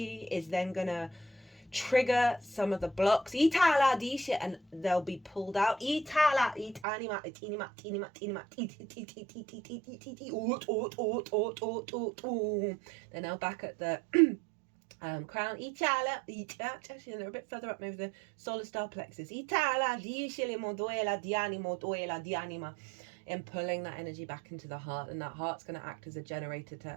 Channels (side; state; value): left; drops out; at 6.9 s